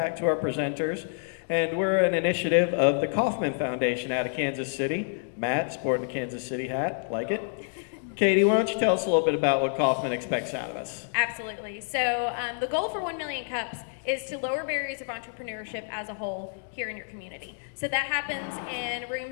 to our presenters. And we're an initiative of the Kauffman Foundation out of Kansas City. Matt, sporting the Kansas City hat. Like it? Katie, why don't you tell us a little bit about what Kauffman expects out of us? Absolutely. So the goal for 1 Million Cups is to lower barriers of entrepreneurship as a whole here in your community. So that happens in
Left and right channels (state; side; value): silent; right; digital silence